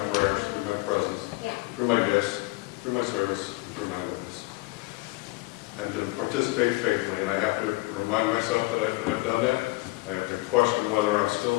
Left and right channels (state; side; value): quieter; right; 22.7 dB